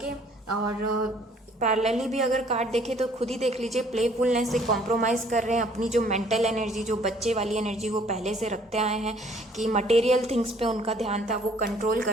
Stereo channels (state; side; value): normal; both; correlation 0.59